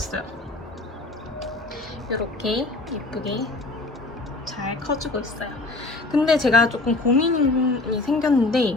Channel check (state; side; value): quieter; right; 3.1 dB